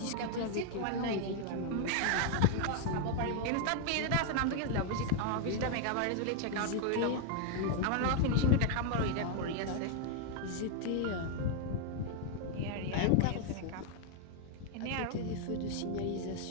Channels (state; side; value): different; both; correlation 0.00